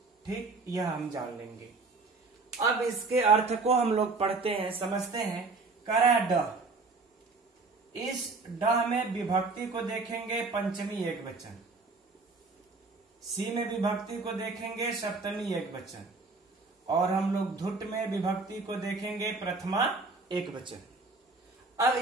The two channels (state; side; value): quieter; left; 3.8 dB